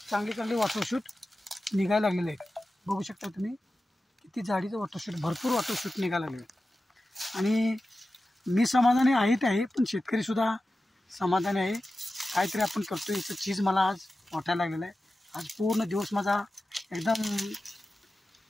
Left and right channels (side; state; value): both; normal; correlation 0.94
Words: चांगले वॉटरशूट निघायला लागलेलं आहे. बघू शकता तुम्ही किती जाडीचं वॉटरशूट, भरपूर वॉटरशूट निघायला लागले. आणि मी समाधानी आहे पण शेतकरीसुद्धा समाधानी आहे. काहीतरी आपण करतो याचं चीज मला आज वाटायला लागलेलं आहे. आज पूर्ण दिवस माझा एकदम